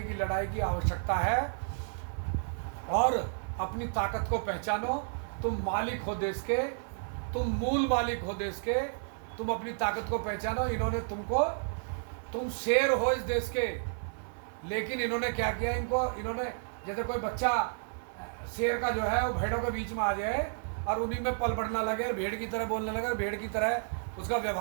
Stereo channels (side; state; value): left; silent; 57 dB below the other